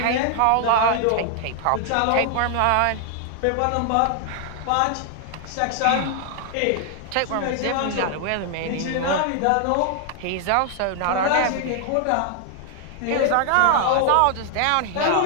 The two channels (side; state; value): both; different; correlation 0.00